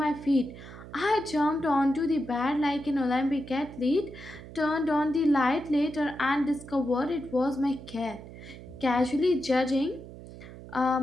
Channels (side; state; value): right; noise; hum, 15 dB below the sound